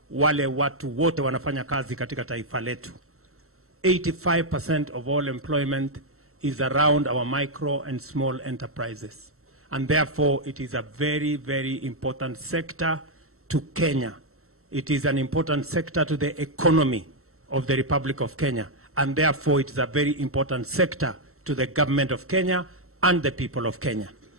wale watu wote wanafanya kazi katika taifa letu. 85% of all employment is around our micro and small enterprises. And therefore, it is a very, very important sector to Kenya. It is an important sector to the economy of the Republic of Kenya. And therefore, it is a very important sector to the government of Kenya and the people of Kenya.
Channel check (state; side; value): late; left; 0.63 ms